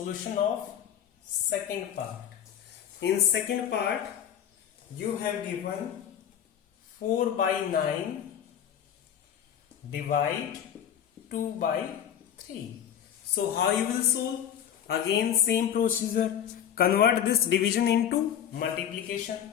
of second part. In second part, you have given 4 by 9 divide 2 by 3. So how you will solve? Again same procedure. Convert this division into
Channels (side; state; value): right; quieter; 9.5 dB